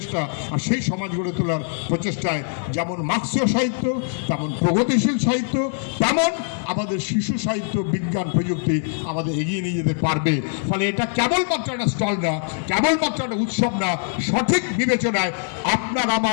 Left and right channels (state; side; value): silent; right; digital silence